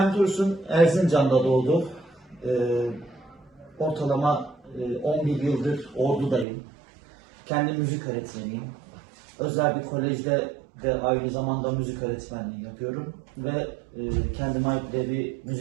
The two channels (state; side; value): drops out; left; at 6.5 s